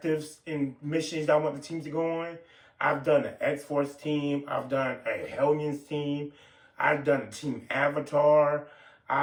and missions I want the teams to go on. I've done an X-Force team, I've done a Hellions team, I've done a Team Avatar,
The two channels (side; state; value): both; identical; correlation 1.00